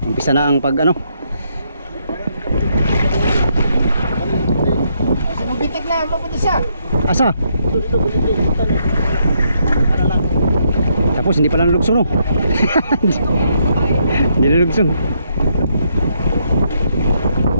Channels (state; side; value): inverted; both; correlation -0.74